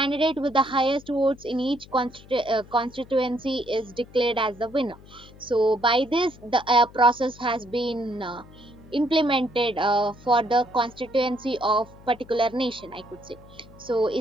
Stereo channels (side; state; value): left; noise; hum, 21 dB below the sound